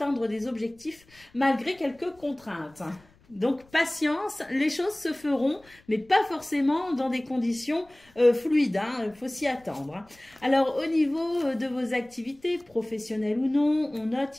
des objectifs malgré quelques contraintes. Donc, patience, les choses se feront, mais pas forcément dans des conditions fluides. Hein, il faut s'y attendre. Hein. Alors, au niveau de vos activités, professionnelles ou non, on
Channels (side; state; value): left; noise; rumble, 29 dB below the sound